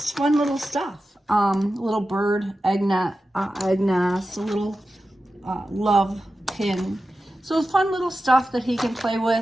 fun little stuff. A little bird, egg nest, a little love pin. So fun little stuff that he can play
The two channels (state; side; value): normal; both; correlation 0.93